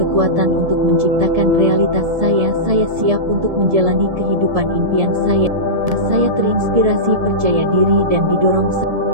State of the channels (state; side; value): late; left; 1.7 ms